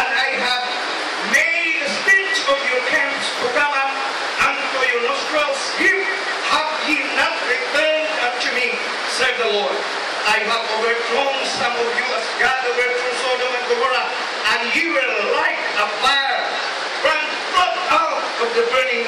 and I have made the stench of your camps to come up unto your nostrils. Here have ye not returned unto me, said the Lord. I have overthrown some of you as God overthrew Sodom and Gomorrah, and you were like a fire burnt out of the burning,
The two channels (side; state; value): both; identical; correlation 1.00